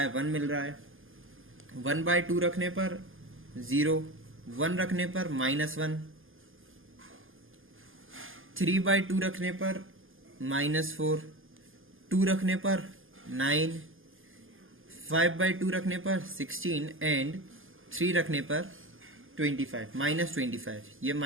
1 मिल रहा है। 1/2 रखने पर 0, 1 रखने पर -1, 3/2 रखने पर -4, 2 रखने पर 9, 5/2 रखने पर 16 एंड 3 रखने पर 25, -25। ये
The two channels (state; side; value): late; left; 0.59 ms